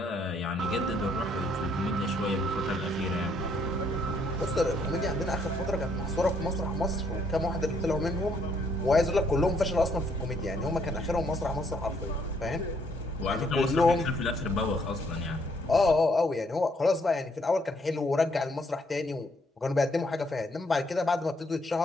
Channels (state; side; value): normal; both; correlation 0.69